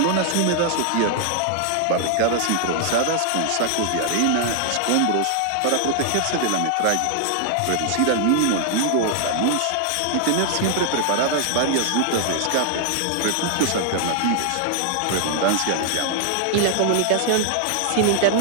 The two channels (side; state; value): both; different; correlation 0.00